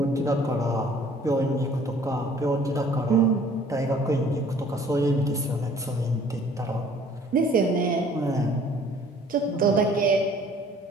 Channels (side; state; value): both; normal; correlation 0.55